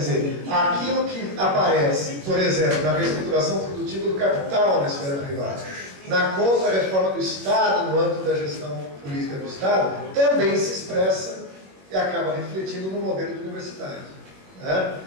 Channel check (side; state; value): left; late; 21 ms